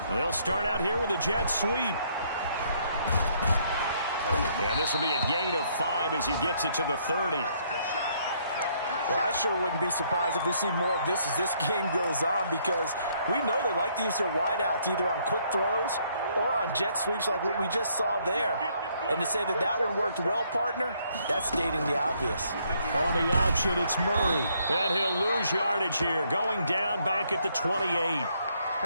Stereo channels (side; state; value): both; inverted; correlation -0.69